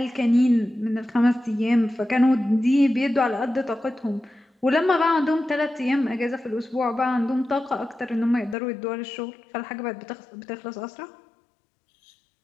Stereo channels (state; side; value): drops out; right; at 8.6 s